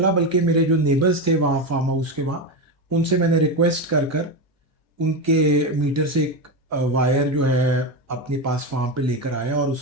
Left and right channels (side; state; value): both; normal; correlation 0.14